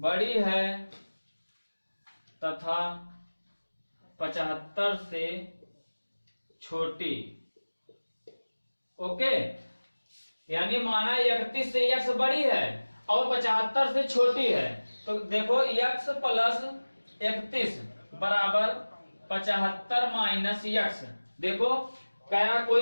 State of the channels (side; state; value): both; inverted; correlation -1.00